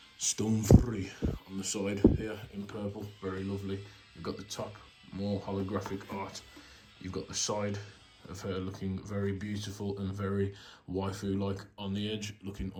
stone free, on the side here in purple, very lovely. You've got the top, more holographic art. You've got the side of her looking very beautiful and very waifu-like on the edge, looking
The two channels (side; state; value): both; identical; correlation 1.00